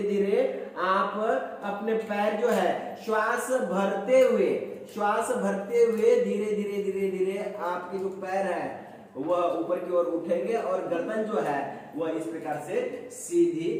धीरे आप अपने पैर जो है श्वास भरते हुए धीरे धीरे धीरे धीरे आपके जो पैर है वह ऊपर की ओर उठेंगे और गर्दन जो है वह इस प्रकार से सीधी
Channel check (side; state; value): both; identical; correlation 1.00